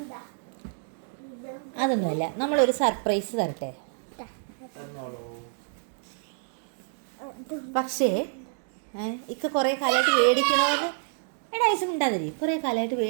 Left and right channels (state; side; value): silent; left; 59 dB below the other